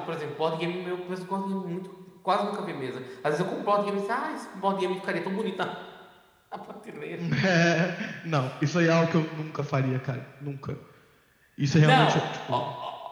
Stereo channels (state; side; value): identical; both; correlation 1.00